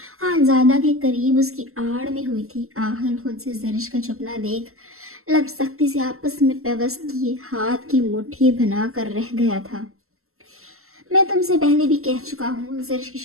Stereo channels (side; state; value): left; late; 0.62 ms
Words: खानज़ादा के करीब उसकी आड़ में हुई थी। आहल खुद से जरिश का छुपना देख लब सख्ती से आपस में पेवस्त किए हाथ की मुट्ठी बना कर रह गया था। मैं तुमसे पहले भी कह चुका हूँ, जरिश की